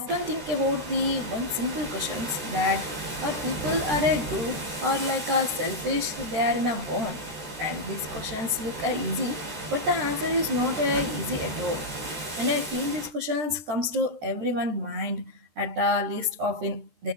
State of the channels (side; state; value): left; late; 13 ms